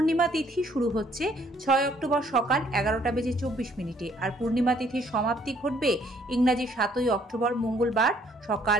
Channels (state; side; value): normal; both; correlation 0.64